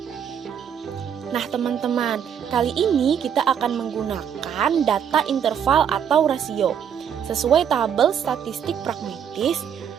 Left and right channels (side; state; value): left; quieter; 8.4 dB